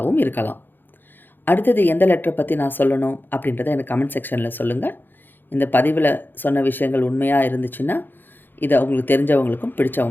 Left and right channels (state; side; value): late; right; 0.094 ms